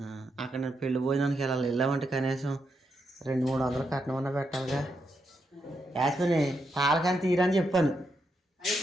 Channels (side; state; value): both; normal; correlation 0.82